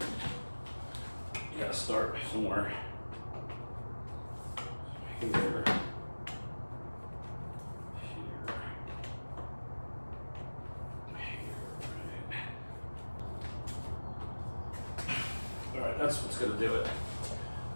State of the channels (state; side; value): inverted; both; correlation -1.00